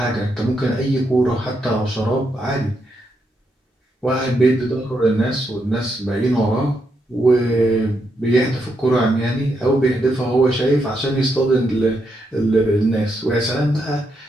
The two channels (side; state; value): both; normal; correlation 0.81